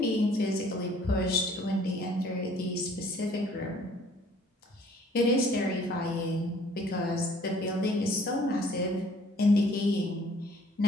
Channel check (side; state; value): both; normal; correlation 0.57